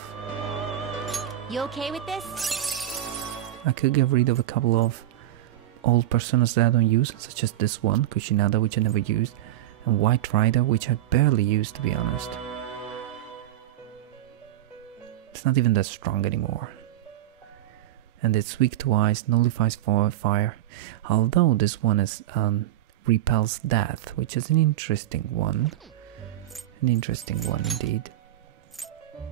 You okay with this? I could get rid of a couple of old personas that I don't use, such as this one, Kushinada, which I never used, and White Rider, which I barely used, to be honest. It's not even that strong anymore. And it's weak to ice, nullifies fire, although this one is repels death, which is an interesting one. An interesting one indeed.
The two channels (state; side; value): quieter; left; 13.4 dB